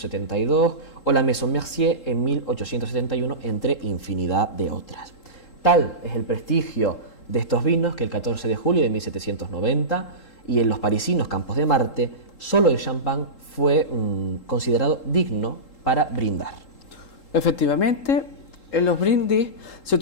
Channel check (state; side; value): late; right; 3.8 ms